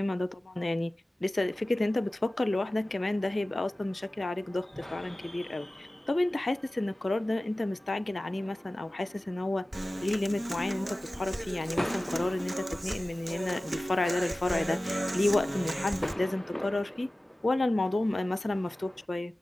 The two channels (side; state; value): both; normal; correlation 0.97